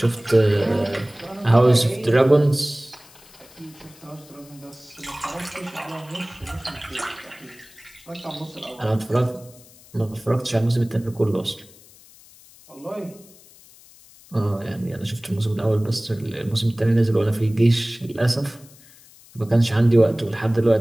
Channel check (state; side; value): noise; left; hiss, 24 dB below the sound